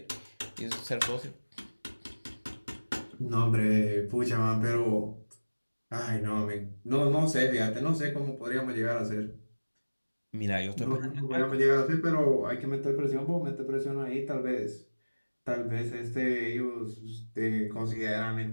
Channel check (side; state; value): both; inverted; correlation -1.00